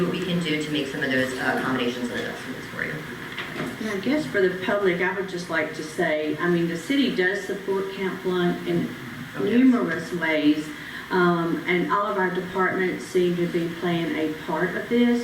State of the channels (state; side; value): identical; both; correlation 1.00